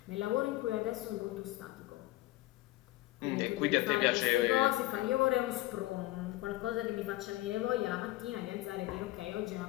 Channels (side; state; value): right; quieter; 17.8 dB